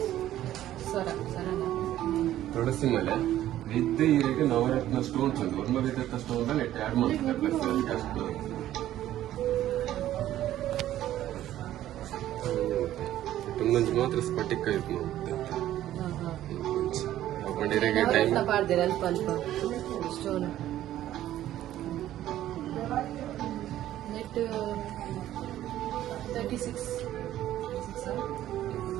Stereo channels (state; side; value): quieter; left; 13.0 dB